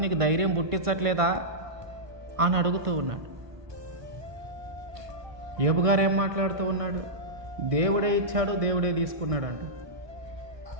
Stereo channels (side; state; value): left; late; 1.6 ms